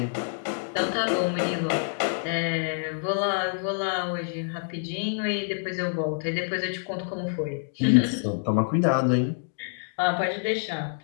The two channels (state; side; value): silent; right; digital silence